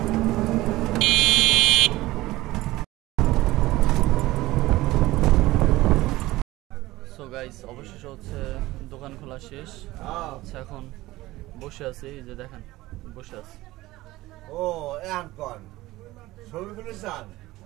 সো গাইস অবশেষে হচ্ছে দোকান খোলা শেষ। আচ্ছা এখন বসে আছি, এই যে দেখেন বসে আছি। ও এখন ছবিগুলো চান,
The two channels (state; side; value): quieter; left; 18.0 dB